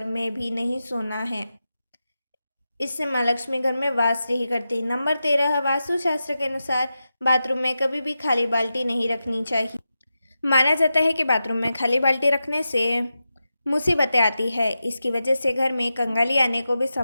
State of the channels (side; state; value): both; inverted; correlation -0.91